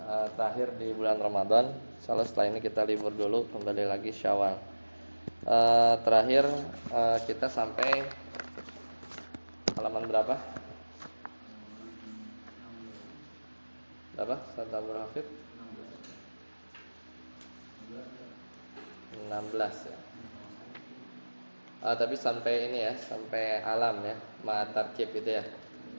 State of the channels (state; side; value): inverted; both; correlation -1.00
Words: terakhir di bulan Ramadan. Insyaallah setelah ini kita libur dulu, kembali lagi Syawal. Terakhir kita sampai halaman berapa? Berapa? Ustaz Abdul Hafid? 16 ya. Tapi sampai ini ya, sampai alam ya, ma'atarkib itu ya.